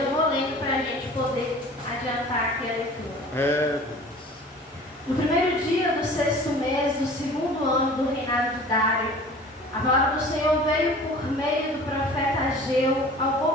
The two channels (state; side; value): normal; both; correlation 0.44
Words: vou lendo para a gente poder adiantar aqui a leitura. No primeiro dia do 6º mês do 2º ano do reinado de Dário, a palavra do Senhor veio por meio do profeta Ageu ao